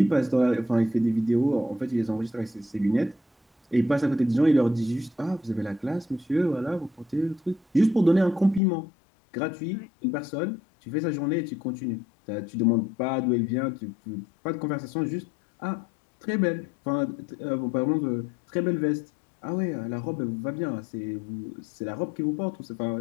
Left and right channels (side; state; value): right; drops out; at 8.6 s